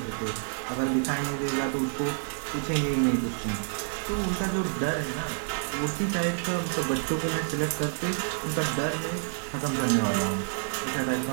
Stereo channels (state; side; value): silent; left; digital silence